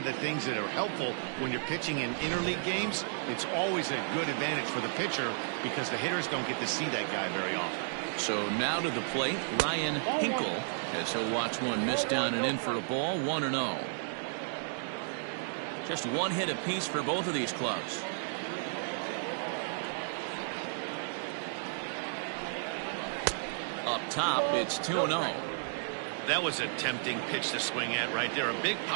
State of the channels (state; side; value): silent; left; digital silence